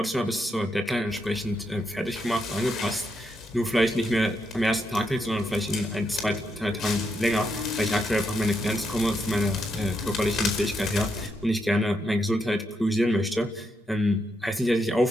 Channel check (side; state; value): both; normal; correlation 0.80